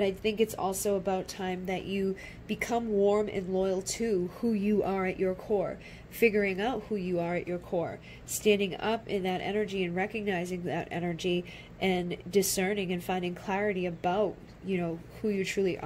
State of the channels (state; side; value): identical; both; correlation 1.00